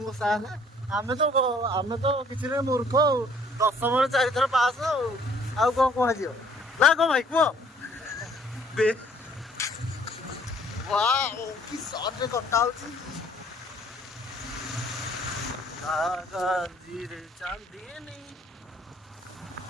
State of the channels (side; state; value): both; normal; correlation 0.59